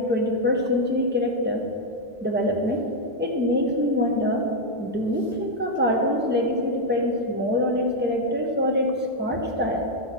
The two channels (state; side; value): normal; both; correlation 0.00